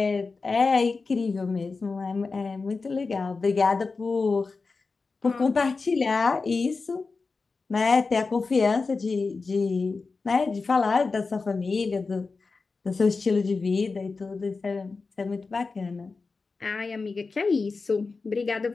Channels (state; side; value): quieter; right; 4.2 dB